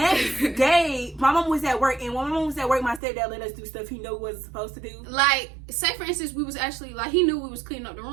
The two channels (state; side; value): drops out; left; at 3.0 s